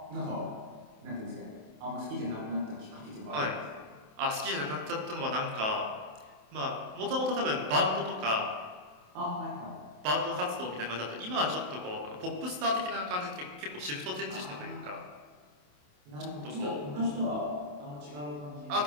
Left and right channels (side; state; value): left; late; 27 ms